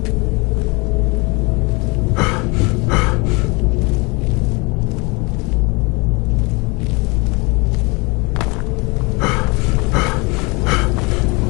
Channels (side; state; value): right; quieter; 27.7 dB